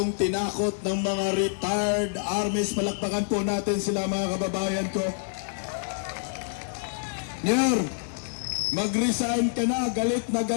tinakot ng mga retired armies. Palakpakan po natin sila mga kababayan ko. Nyor, mag-resign ka na.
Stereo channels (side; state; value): right; silent; digital silence